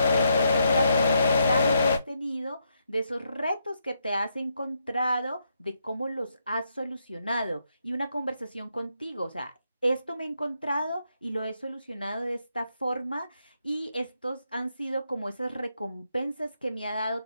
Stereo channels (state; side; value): inverted; both; correlation -0.79